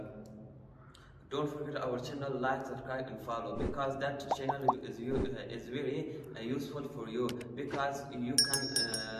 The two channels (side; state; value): both; identical; correlation 1.00